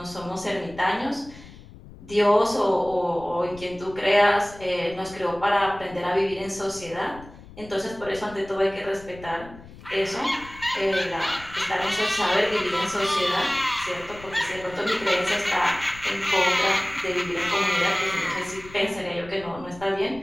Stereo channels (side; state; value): left; noise; rumble, 18 dB below the sound